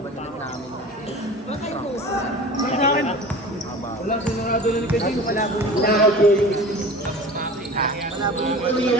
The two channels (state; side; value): normal; both; correlation 0.38